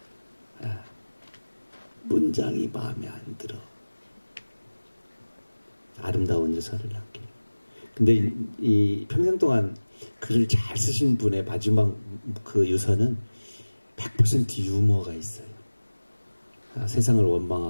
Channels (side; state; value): both; inverted; correlation -1.00